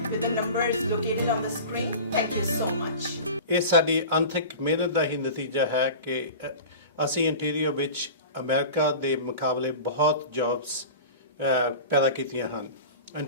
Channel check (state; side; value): inverted; both; correlation -0.35